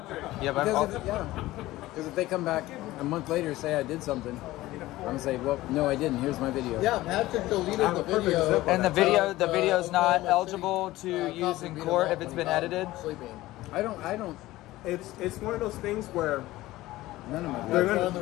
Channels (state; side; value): quieter; right; 17.2 dB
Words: Yeah, but because if they come back a month later and say I did something, I'm gonna say, well, no, I didn't. Here's my video. Yeah, Patrick deleted the video. And the video's not eligible to use in court if it's been edited. Sleeping. I don't. It's one of those things where None of my That's one of the